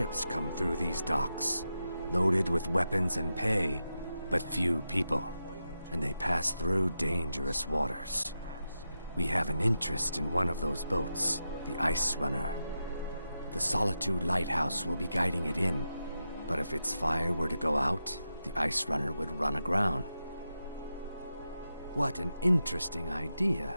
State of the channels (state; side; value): inverted; both; correlation -0.89